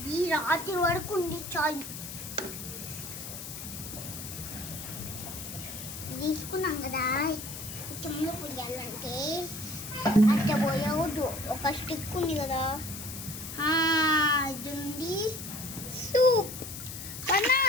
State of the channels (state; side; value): noise; left; hiss, 9 dB below the sound